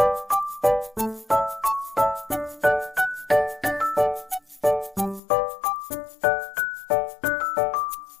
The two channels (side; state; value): right; drops out; at 5.2 s